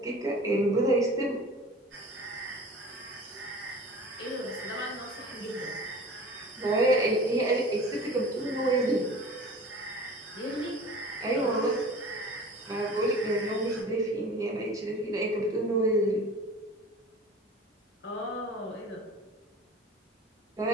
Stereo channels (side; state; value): both; normal; correlation 0.40